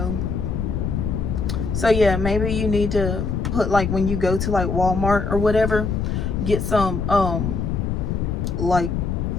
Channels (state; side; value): noise; left; rumble, 1 dB below the sound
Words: So yeah, maybe you need to put, like, when you go to like Walmart or whatever, get some like